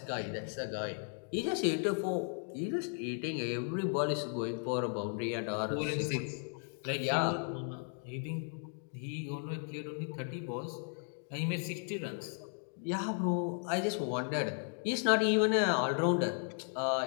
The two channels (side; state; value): right; silent; 54 dB below the other